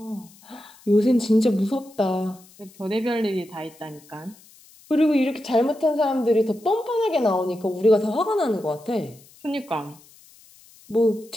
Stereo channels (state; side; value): noise; left; hiss, 26 dB below the sound